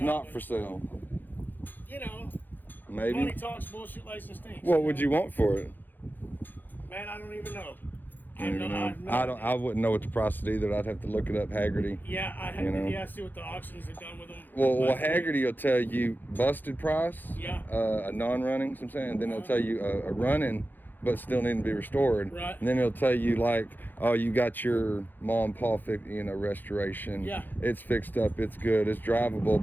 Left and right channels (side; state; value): right; late; 0.089 ms